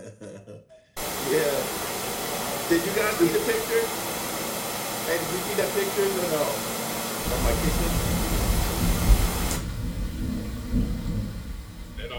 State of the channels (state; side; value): identical; both; correlation 1.00